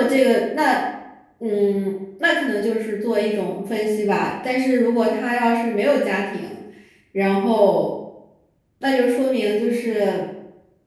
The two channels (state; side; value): identical; both; correlation 1.00